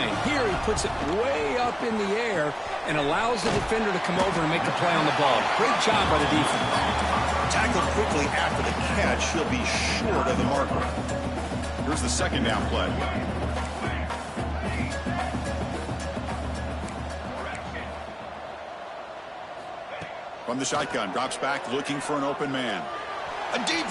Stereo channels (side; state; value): both; identical; correlation 1.00